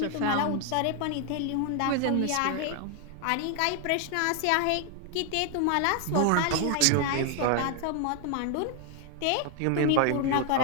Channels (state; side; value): different; both; correlation 0.00